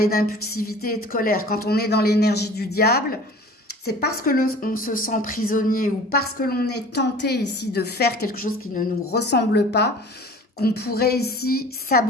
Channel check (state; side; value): normal; both; correlation 0.44